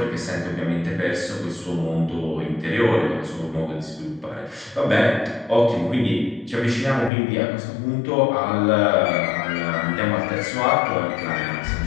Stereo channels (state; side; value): drops out; right; at 7.1 s